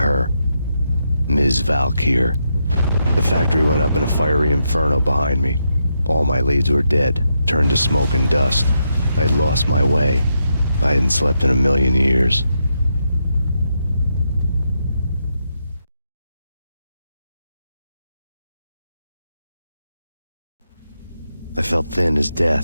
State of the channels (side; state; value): both; inverted; correlation -0.82